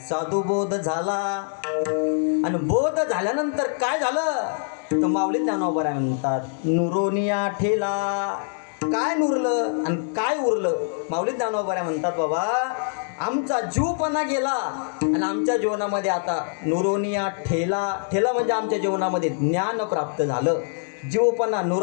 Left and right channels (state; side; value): silent; right; digital silence